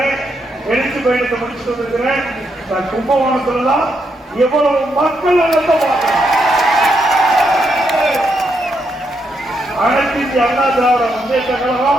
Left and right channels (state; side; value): normal; both; correlation 0.79